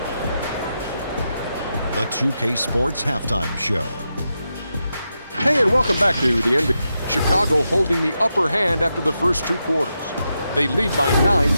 The 2K Sports Halftime Show. Hey, and welcome back to the NBA. Chicago holding the upper hand after the first 2 quarters. They lead by 9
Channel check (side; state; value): both; inverted; correlation -0.87